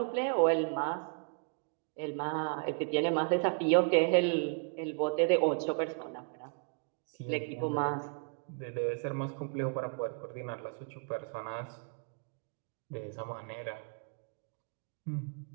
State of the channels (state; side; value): quieter; left; 39.7 dB